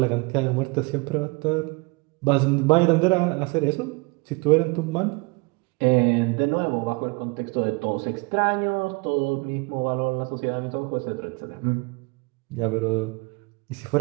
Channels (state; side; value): quieter; left; 27.9 dB